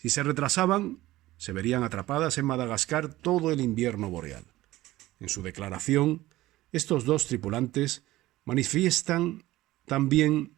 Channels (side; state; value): left; quieter; 17.0 dB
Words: se retrasaban, se verían atrapadas en Madagascar todo el invierno boreal. En su declaración, estos dos tripulantes manifiestan también